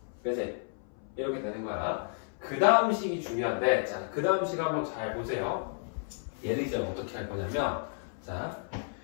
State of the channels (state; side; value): silent; right; 56 dB below the other